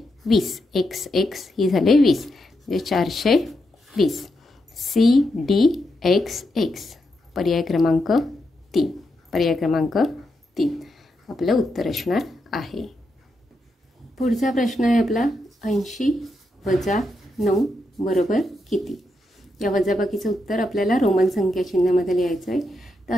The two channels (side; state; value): both; normal; correlation 0.83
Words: 20. XX ही झाले 20 म्हणजे 420. CDXX पर्याय क्रमांक 3. पर्याय क्रमांक 3 आपलं उत्तर असणार आहे. पुढचा प्रश्न आहे आपला 80 वजा 9 बरोबर किती? या वजाबाकीचं उत्तर आपल्याला रोमन संख्या चिन्हामध्ये लिहायचं आहे. तर